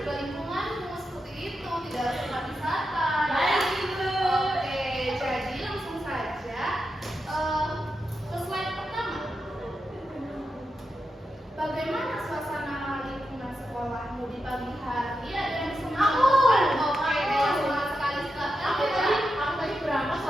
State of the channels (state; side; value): normal; both; correlation 0.88